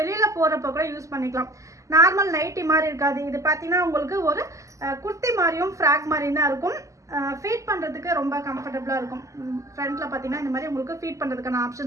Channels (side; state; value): left; late; 0.16 ms